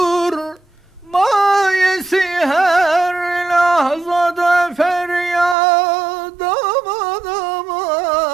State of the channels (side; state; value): left; drops out; at 5.6 s